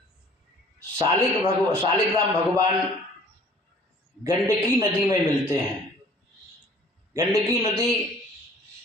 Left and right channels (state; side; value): normal; both; correlation 0.53